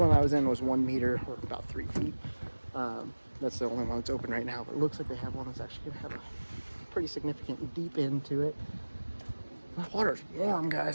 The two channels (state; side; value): inverted; both; correlation -1.00